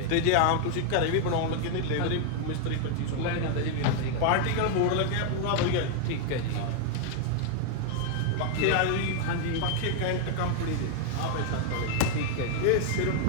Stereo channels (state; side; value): different; both; correlation 0.00